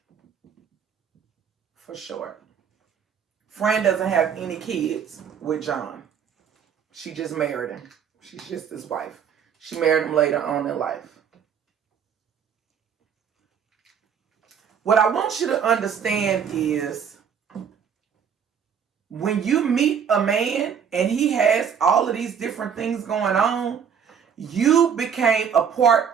for short. Fran doesn't have any kids with John. She just married him. She's just his wife. She married him later on in life. What I want you to understand is when you meet a man and he has all of these different things going on, you became a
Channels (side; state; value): left; quieter; 7.5 dB